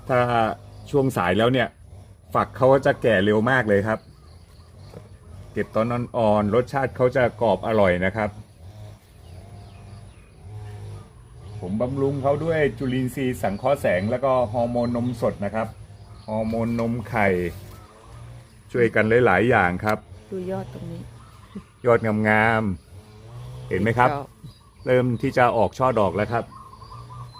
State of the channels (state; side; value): identical; both; correlation 1.00